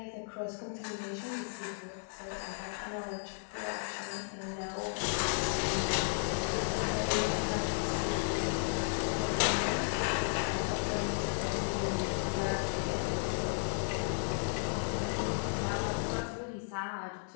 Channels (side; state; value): right; silent; digital silence